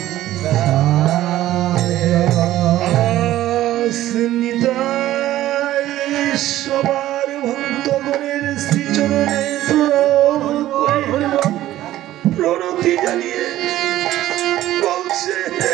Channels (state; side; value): quieter; left; 14.3 dB